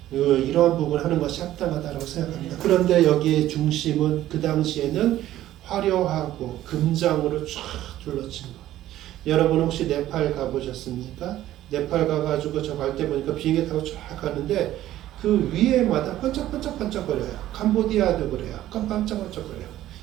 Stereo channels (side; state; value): left; quieter; 13.7 dB